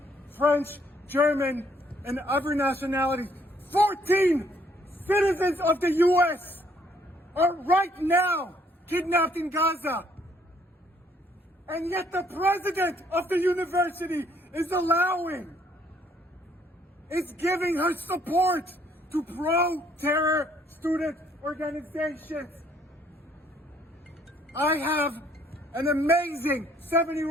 French, German, and other nationalities. 14 citizens of the U.S. are right now kidnapped in Gaza. And yet the president of the university is giving her support to pro-terror student organizations. I have an amazing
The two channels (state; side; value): normal; both; correlation 0.65